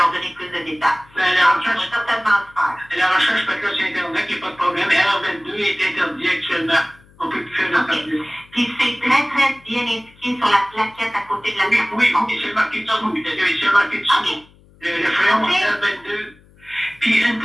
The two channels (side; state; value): left; noise; hum, 28 dB below the sound